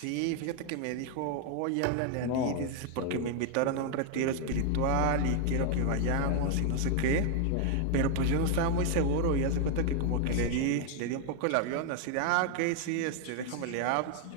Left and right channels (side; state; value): both; different; correlation 0.01